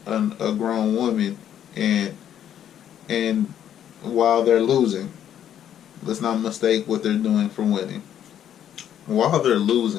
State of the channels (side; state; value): right; quieter; 10.1 dB